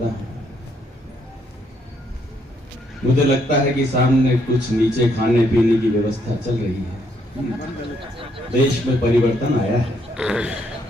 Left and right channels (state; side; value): normal; both; correlation 0.72